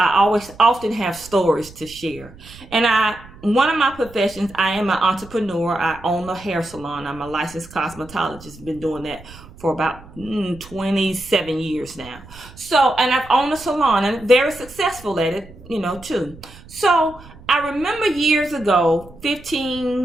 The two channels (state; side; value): noise; right; rumble, 20 dB below the sound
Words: always often have stories to share. And one of my professions, I am an entrepreneur. I own a hair salon. I'm a licensed cosmetologist. Been doing that for about 27 years now. So, and I've owned a salon and very successful at it, too. So I remember years ago,